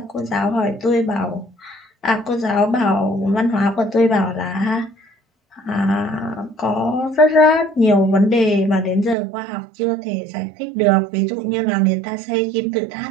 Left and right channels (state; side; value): drops out; left; at 9.2 s